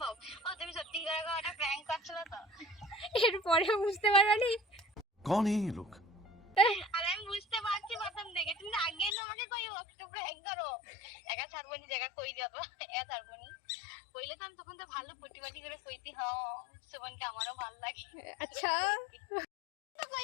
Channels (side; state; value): right; drops out; at 9.2 s